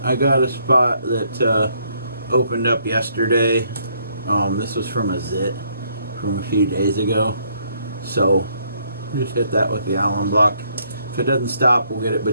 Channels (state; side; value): inverted; both; correlation -0.69